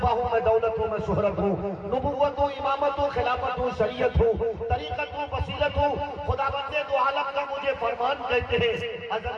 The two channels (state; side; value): identical; both; correlation 1.00